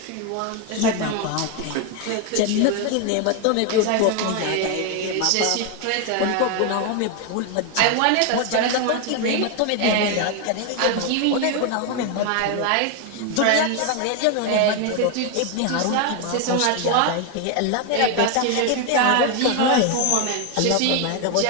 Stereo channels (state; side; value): different; both; correlation 0.01